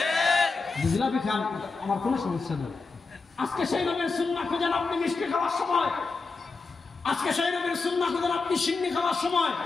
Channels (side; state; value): right; quieter; 4.1 dB